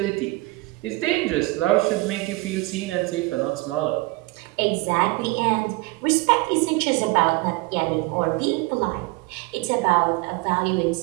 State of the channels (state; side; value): quieter; left; 22.8 dB